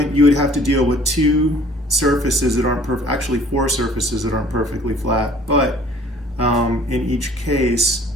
have to deal with two surfaces that aren't actually four surfaces that aren't perfectly flat, but in each case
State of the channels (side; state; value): both; normal; correlation 0.53